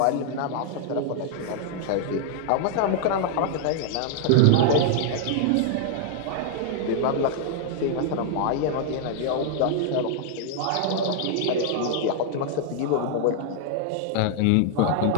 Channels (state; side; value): different; both; correlation -0.01